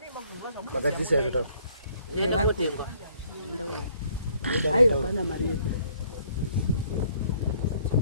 Makadisi ya kutoka. Hayo kana Maria.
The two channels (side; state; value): both; inverted; correlation -0.63